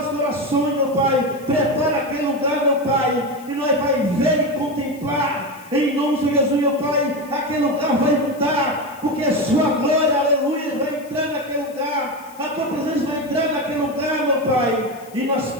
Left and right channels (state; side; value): noise; left; hiss, 23 dB below the sound